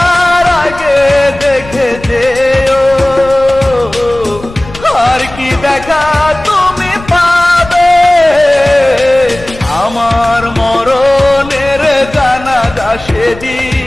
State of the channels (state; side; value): noise; left; rumble, 16 dB below the sound